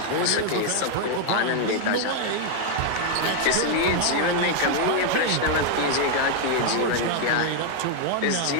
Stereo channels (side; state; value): both; different; correlation 0.00